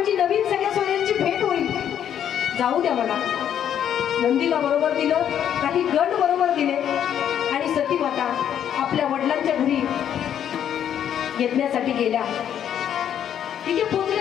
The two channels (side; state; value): right; quieter; 9.6 dB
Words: नवीन सगळ्या सोयऱ्यांची भेट होईल, जाऊ द्या मला. नंदीला बरोबर दिलं, काही गण बरोबर दिले आणि सती माता आपल्या वडिलांच्या घरी येण्यासाठी गेल्या. तिथे